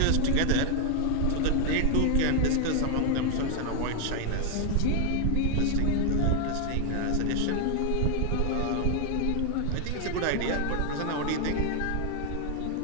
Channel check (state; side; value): different; both; correlation 0.00